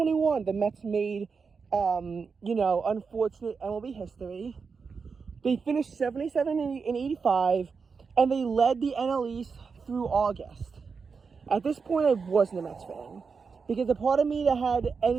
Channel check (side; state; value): left; quieter; 5.3 dB